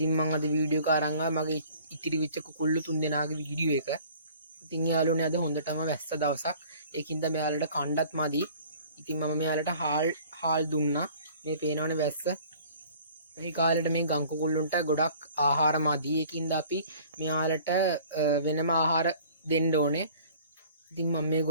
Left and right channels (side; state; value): both; inverted; correlation -0.50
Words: මම අද වීඩියෝ එක අරන් ආවා මගේ ඉතිරි වෙච්ච කුකුල්ලු තුන්දෙනාගේ වීඩියෝ එක. ඉතින් යාළුවනේ අද හොඳටම වැස්ස දවසක්. ඒකින්ද මෙයාලට කණ්ඩත් මදි. ඉතින් මම මෙයාලට හාල් දුන්නා. මේ පේනවනේ වැස්ස. මේ කාලේට මේ ගම් කුකුල්ලුන්ට ගොඩක් ආහාර මදි. ඒකින්ද අපි මෙයාලට වෙනම ආහාර දෙන්න ඕනේ. ඉතින් මම